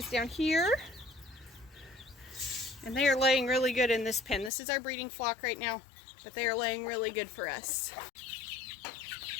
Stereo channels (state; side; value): drops out; right; at 4.5 s